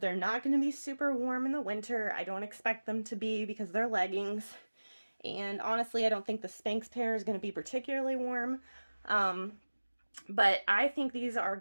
not going to be super warm in the winter. I don't expect them to be because they're leggings. And honestly, I don't think the Spanx pair is going to be particularly warm. But I think these are a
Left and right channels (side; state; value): both; inverted; correlation -1.00